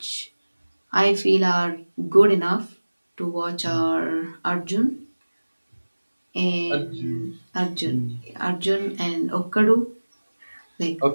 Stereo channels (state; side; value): inverted; both; correlation -1.00